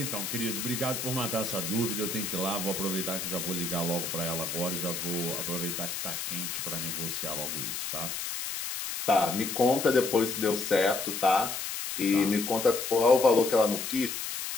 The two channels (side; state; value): left; noise; hiss, 4 dB below the sound